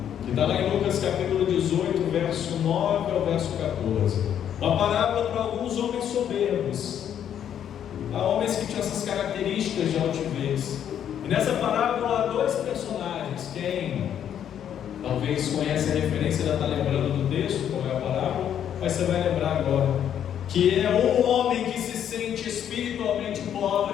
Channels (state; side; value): quieter; right; 9.6 dB